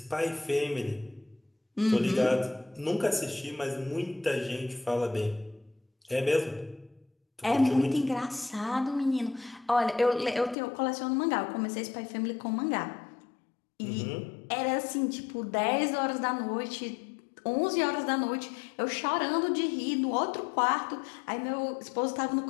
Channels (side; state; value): right; drops out; at 10.6 s